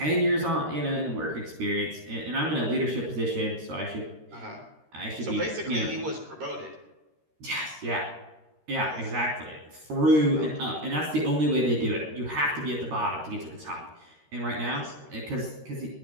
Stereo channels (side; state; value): left; late; 13 ms